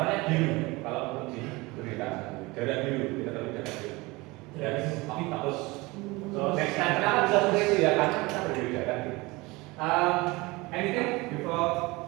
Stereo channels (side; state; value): left; quieter; 23.1 dB